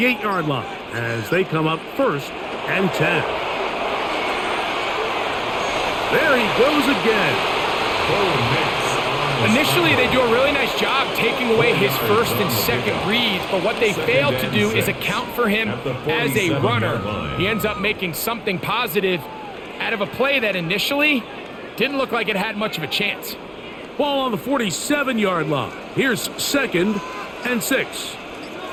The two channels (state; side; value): identical; both; correlation 1.00